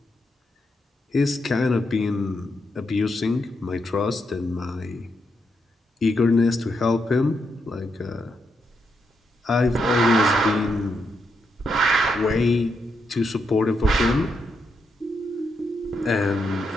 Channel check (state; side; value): normal; both; correlation 0.81